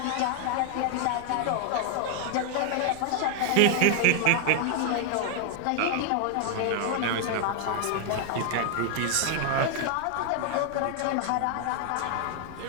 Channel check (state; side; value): different; both; correlation 0.00